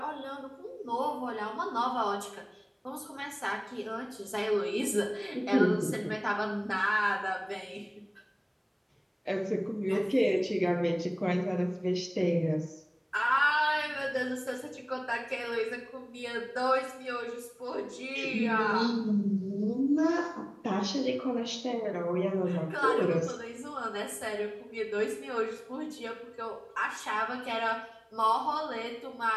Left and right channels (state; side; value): identical; both; correlation 1.00